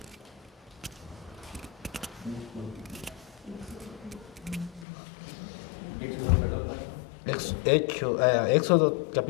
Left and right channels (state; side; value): drops out; right; at 4.9 s